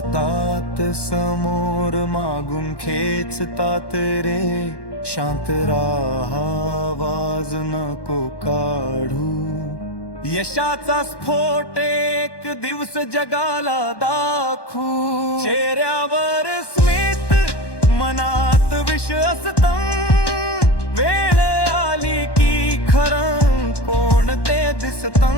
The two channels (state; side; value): late; right; 1.1 ms